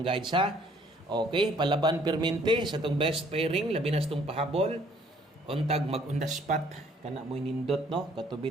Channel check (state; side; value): normal; both; correlation 0.61